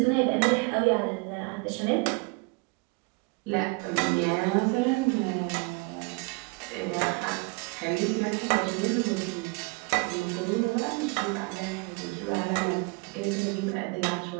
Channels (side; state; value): left; quieter; 30.0 dB